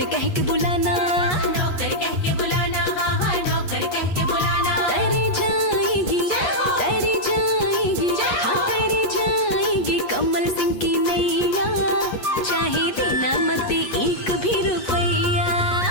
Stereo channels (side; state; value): right; late; 8.3 ms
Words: कह के बुलाना। नौकर कह के बुलाना, हाँ हाँ नौकर कह के बुलाना। तर जाएगी, तर जाएगी, हाँ तर जाएगी कमल सिंह की नैया, चाहे देना मत एक भी रुपैया।